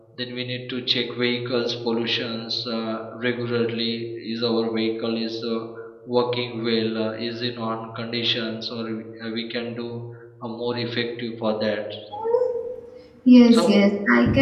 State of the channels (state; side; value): identical; both; correlation 1.00